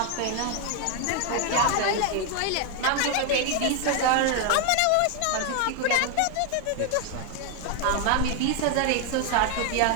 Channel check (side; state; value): both; different; correlation 0.01